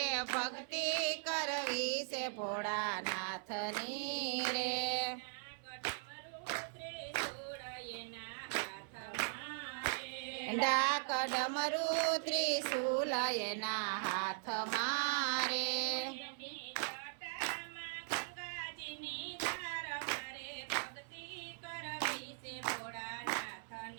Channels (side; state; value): left; silent; 51 dB below the other